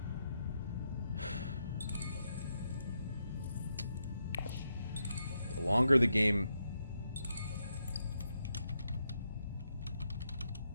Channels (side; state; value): both; inverted; correlation -0.82